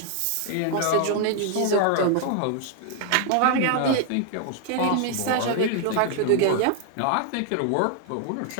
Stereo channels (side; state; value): both; different; correlation 0.00